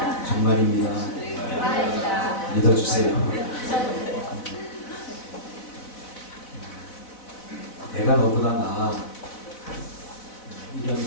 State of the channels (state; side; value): late; right; 4.1 ms